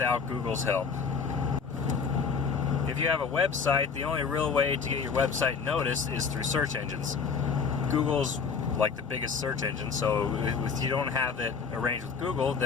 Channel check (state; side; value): quieter; right; 5.7 dB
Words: Google's help. If you have a website, the only real way to get your website noticed is through search engines. Google's like the biggest search engine, so if you don't have it arranged with Google,